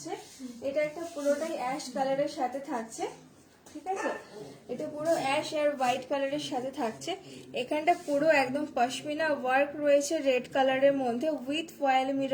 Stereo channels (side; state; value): both; identical; correlation 1.00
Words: এটা একটা পুরোটাই অ্যাশ কালারের সাথে থাকছে, ঠিক আছে? এটা পুরো অ্যাশ আর হোয়াইট কালারের সাথে থাকছে। এখানটা পুরো একদম পশমিনা ওয়ার্ক রয়েছে রেড কালারের মধ্যে, উইথ ফয়েল